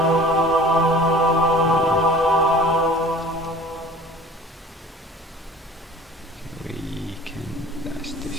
We can blast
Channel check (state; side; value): normal; both; correlation 0.46